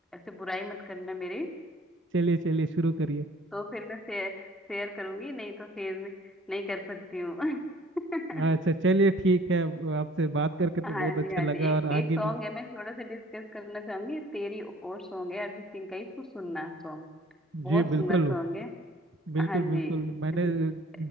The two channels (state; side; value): normal; both; correlation 0.54